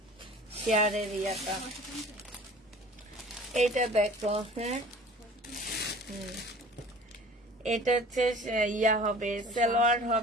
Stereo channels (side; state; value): both; normal; correlation 0.45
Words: শেয়ারের ইয়াটা। এটা দেখো, হ্যাঁ, এটা হচ্ছে ইয়া হবে, সালোয়ার